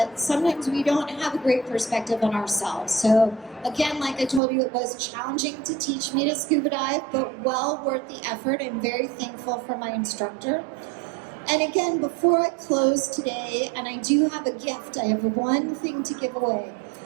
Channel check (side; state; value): left; drops out; at 4.4 s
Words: sometimes we don't have a great perspective on ourselves. So again, like I told you, it was challenging to teach me to scuba dive, but well worth the effort. I'm very thankful for my instructor. And again, before I close today, and I do have a gift, I have one thing to give away.